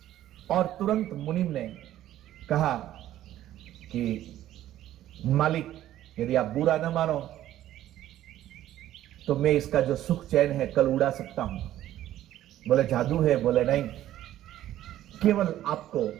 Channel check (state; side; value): quieter; left; 13.1 dB